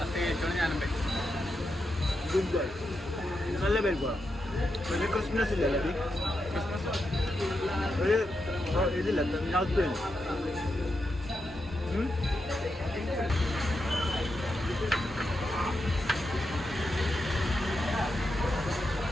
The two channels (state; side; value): normal; both; correlation 0.86